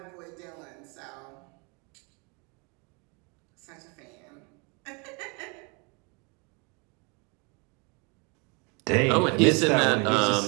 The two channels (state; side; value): quieter; left; 31.8 dB